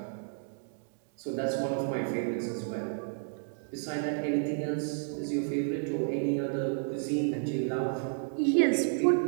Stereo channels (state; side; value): silent; left; digital silence